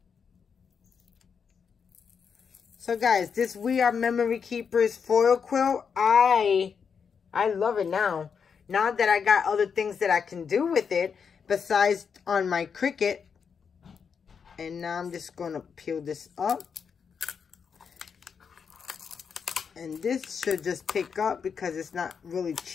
So guys, this We Are Memory Keepers foil quilt, I love it now. Now that I got other things that I can do with it, besides on my Cricut. And now I'm just going to peel this up. And this should just pick up because it's not really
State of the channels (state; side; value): quieter; right; 6.4 dB